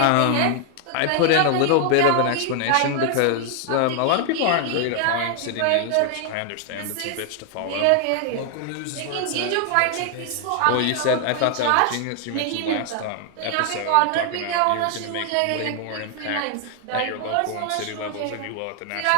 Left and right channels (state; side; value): different; both; correlation 0.00